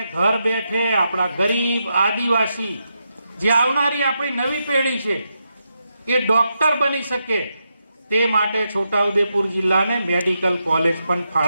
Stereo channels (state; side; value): inverted; both; correlation -0.85